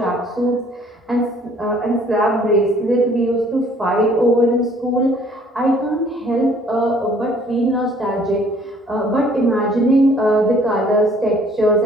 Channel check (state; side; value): normal; both; correlation 0.58